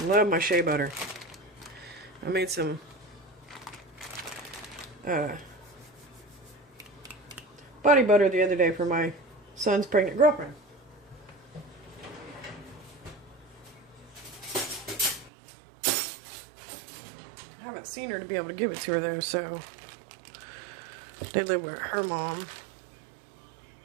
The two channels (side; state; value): left; drops out; at 15.3 s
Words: love my shea butter. I made some body butter the other day for my son's pregnant girlfriend. I haven't seen her to be able to give it to her though, so they live with her mom.